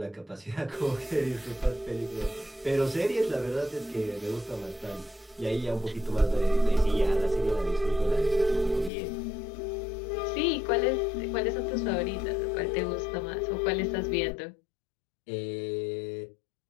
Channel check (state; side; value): drops out; right; at 8.9 s